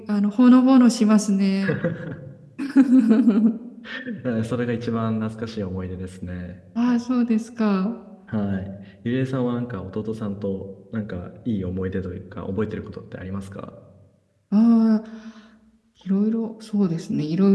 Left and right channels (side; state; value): both; identical; correlation 1.00